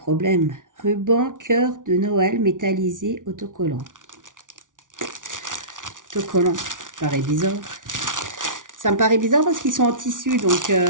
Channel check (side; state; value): left; late; 0.88 ms